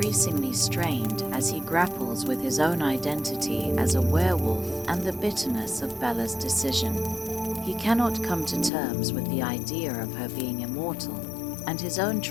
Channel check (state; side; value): drops out; right; at 8.7 s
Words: strained as he grapples with his own identity as a werewolf and the bitterness of Bella's decision. He cannot come to terms with the idea of her being immortal, and his own